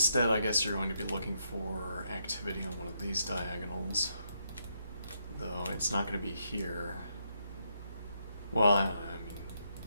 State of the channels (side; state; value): both; inverted; correlation -0.79